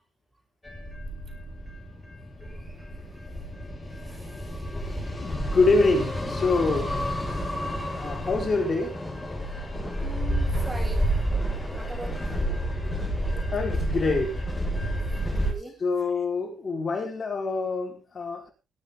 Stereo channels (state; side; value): normal; both; correlation 0.81